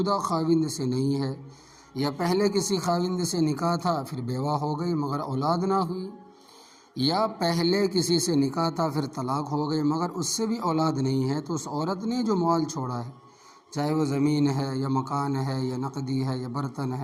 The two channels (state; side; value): identical; both; correlation 1.00